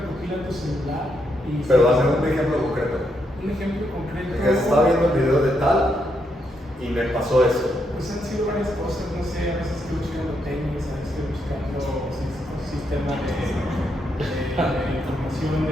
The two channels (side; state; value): both; normal; correlation 0.79